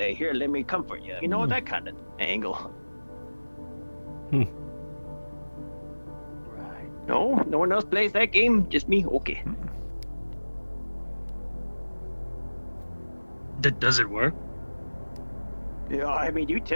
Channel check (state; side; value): inverted; both; correlation -1.00